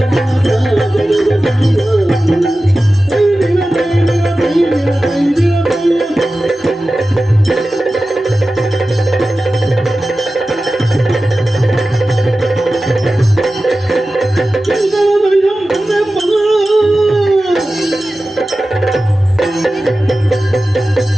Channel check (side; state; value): both; normal; correlation 0.95